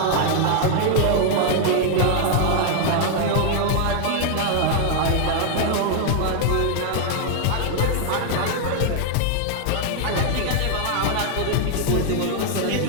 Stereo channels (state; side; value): different; both; correlation 0.00